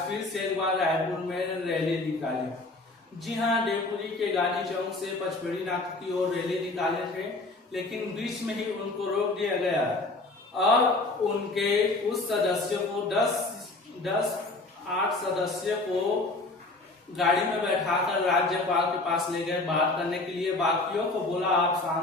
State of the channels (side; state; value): right; quieter; 3.1 dB